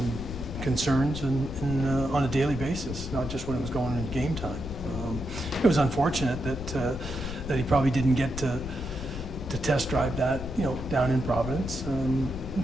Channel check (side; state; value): left; noise; rumble, 8 dB below the sound